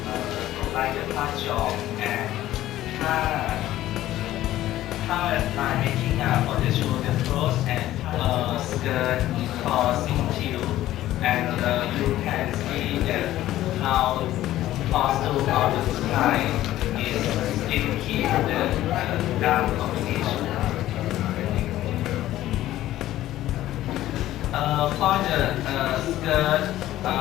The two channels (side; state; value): right; quieter; 14.3 dB